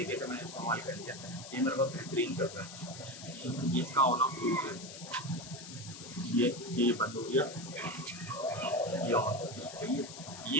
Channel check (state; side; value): noise; left; hiss, 12 dB below the sound